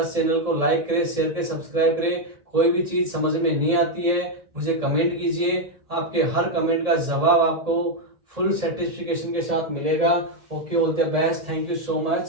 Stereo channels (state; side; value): late; left; 1.8 ms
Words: चैनल को लाइक करे, शेयर करे, सब्सक्राइब करे। कोई भी चीज समझ में नहीं आती है मुझे कमेंट कीजिए, आपके हर कमेंट का जवाब आपको फुल सर्टिफिकेशन के साथ मिलेगा। Okay, all the best, thank you so